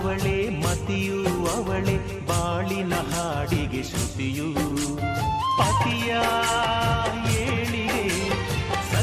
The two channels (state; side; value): identical; both; correlation 1.00